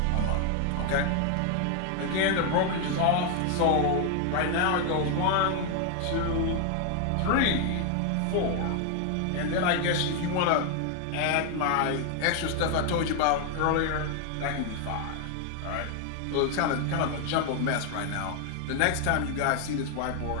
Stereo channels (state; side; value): different; both; correlation 0.00